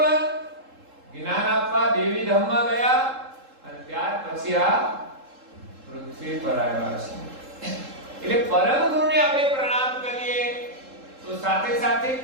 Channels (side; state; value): left; late; 3.7 ms